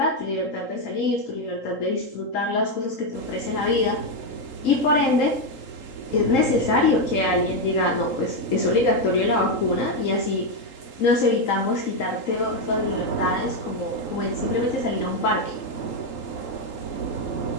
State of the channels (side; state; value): right; late; 3.8 ms